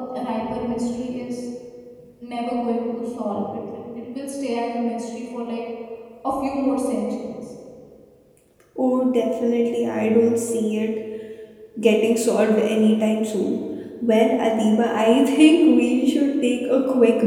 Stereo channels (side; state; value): both; identical; correlation 1.00